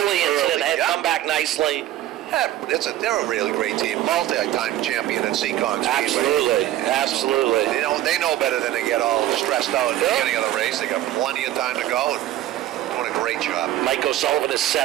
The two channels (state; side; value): quieter; left; 13.7 dB